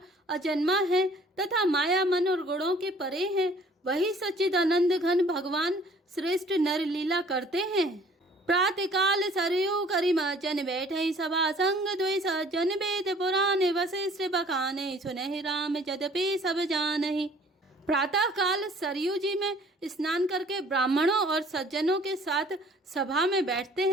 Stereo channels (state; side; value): normal; both; correlation 0.54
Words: अजन्मा है तथा माया मन और गुणों के परे है, वही सच्चिदानंद घन भगवान श्रेष्ठ नर लीला करते हैं। प्रातः काल सरयू करिमचन, बैठे सभा संग द्वै सज्जन। वेद पुराण वशिष्ठ बखाने, सुनहि राम यद्यपि सब जानहि। प्रातः काल सरयू जी में स्नान करके ब्राह्मणों और सज्जनों के साथ सभा में बैठते